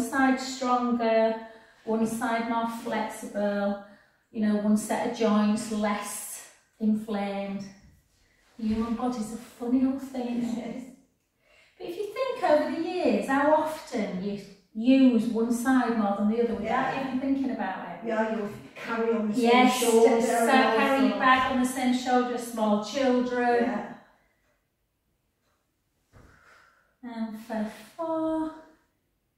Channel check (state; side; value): identical; both; correlation 1.00